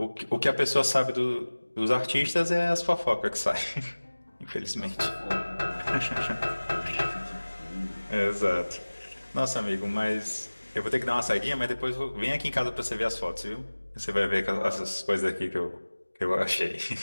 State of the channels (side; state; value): both; inverted; correlation -1.00